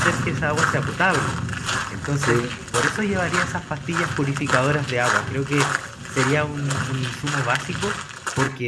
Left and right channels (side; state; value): both; identical; correlation 1.00